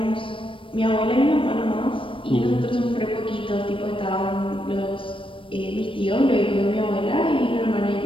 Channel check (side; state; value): right; late; 0.25 ms